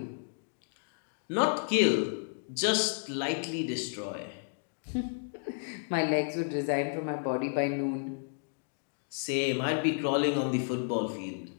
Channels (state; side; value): silent; right; digital silence